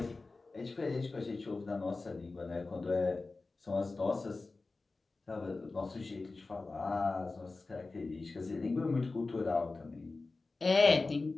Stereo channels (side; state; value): right; quieter; 3.6 dB